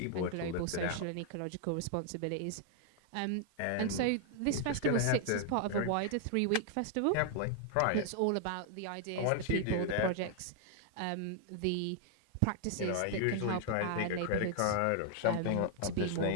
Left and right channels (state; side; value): different; both; correlation 0.00